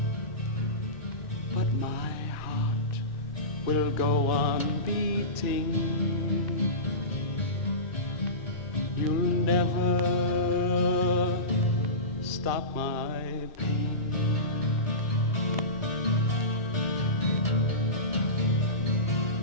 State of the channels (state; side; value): late; right; 2.9 ms